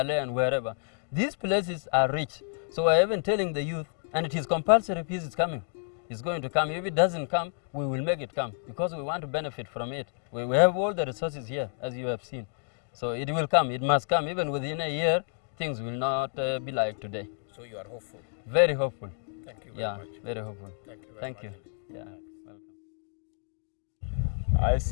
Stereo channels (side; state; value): right; silent; 58 dB below the other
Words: and wherever. These places are rich. So I have been telling the youth, and it is compulsory peace is coming. It's going to come. If it doesn't come, we will make it come because we want to benefit from it. We have all the resources here, as you have seen. So it will come. It must come. Even within a year, things will not be like today. So you are hopeful? Very hopeful. Thank you very much. Yeah, very hopeful. Thank you very Thank much. you. Yeah, welcome. I